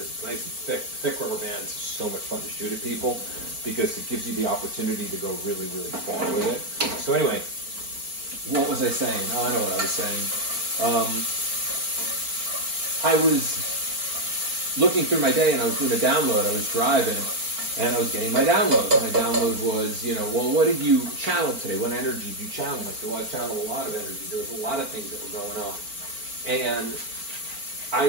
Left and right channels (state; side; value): late; left; 4.5 ms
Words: it's nice and thick. Thick rubber bands are so much fun to shoot at people because it gives you the opportunity to go really, really far with it. So anyway, what was I saying? Oh, I know what I was saying. I was looking through my day, and I was doing a download. I was driving, and I was getting my download. My download was, you know, well, what did you channel today? What energy did you channel? I said, well, I channeled a lot of energy. There was a lot of things that were going on. And I